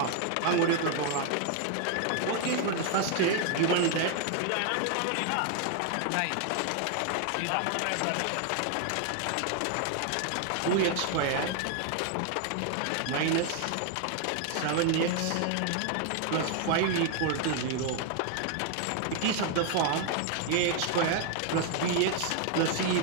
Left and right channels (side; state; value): both; different; correlation 0.00